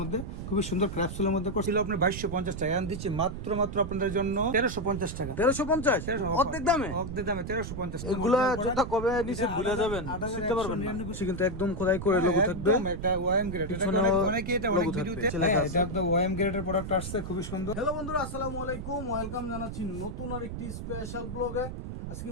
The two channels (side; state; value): right; noise; rumble, 7 dB below the sound